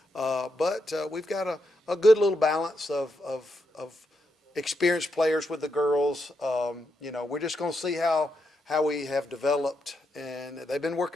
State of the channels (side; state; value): both; normal; correlation 0.82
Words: But we've got a good little balance of experienced players with the girls. We're just going to see how we have developed, and they've been